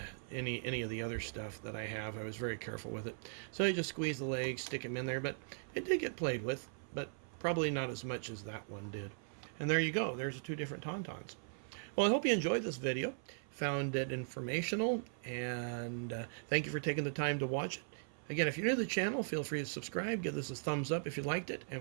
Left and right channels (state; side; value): silent; left; 52 dB below the other